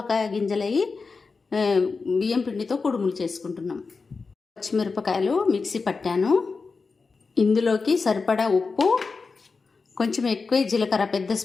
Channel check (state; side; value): quieter; right; 4.5 dB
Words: గింజలవి బియ్యం పిండితో కుడుములు చేసుకుంటున్నాం. పచ్చిమిరపకాయలు మిక్సీ పట్టాను. ఇందులోకి సరిపడా ఉప్పు, కొంచెం ఎక్కువ జీలకర్ర, పెద్ద